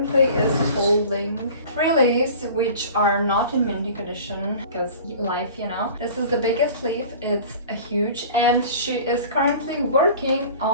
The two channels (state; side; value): inverted; both; correlation -0.42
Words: is holding 3 leaves, which are not in minting condition because life, you know. This is the biggest leaf, it's a huge, and she is currently working